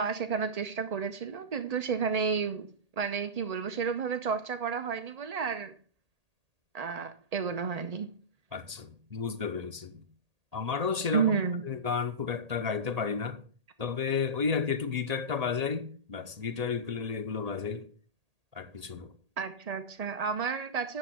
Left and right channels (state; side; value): late; left; 1.8 ms